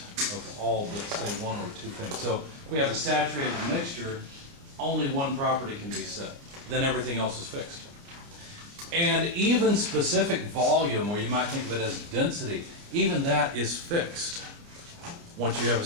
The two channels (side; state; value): left; late; 29 ms